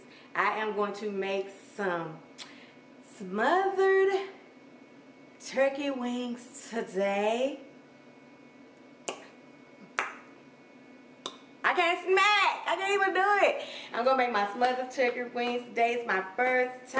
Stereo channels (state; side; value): identical; both; correlation 1.00